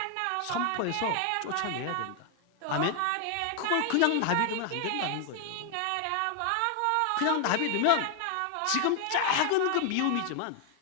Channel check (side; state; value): both; different; correlation 0.00